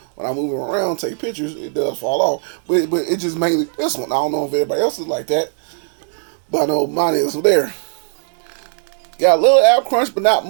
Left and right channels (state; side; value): silent; left; digital silence